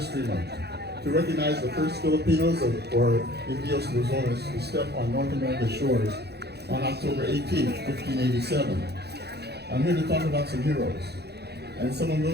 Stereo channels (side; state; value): left; late; 0.48 ms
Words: Month, to recognize the first Filipinos, or Indios Luzones, who stepped on North America's shores on October 18, 1587. I'm here to talk about some heroes, and some of